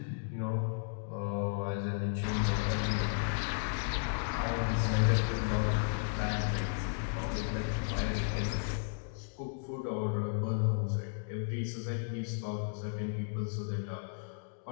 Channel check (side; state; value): right; silent; digital silence